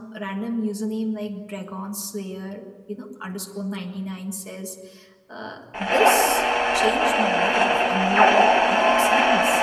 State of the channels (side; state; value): both; identical; correlation 1.00